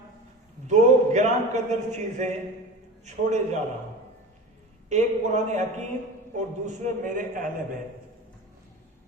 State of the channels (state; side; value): normal; both; correlation 0.33